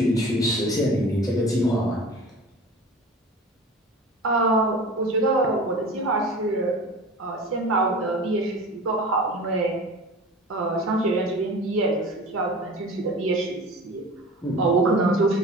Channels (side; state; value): both; normal; correlation 0.38